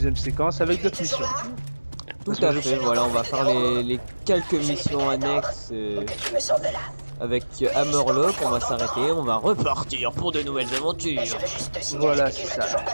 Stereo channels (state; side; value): inverted; both; correlation -1.00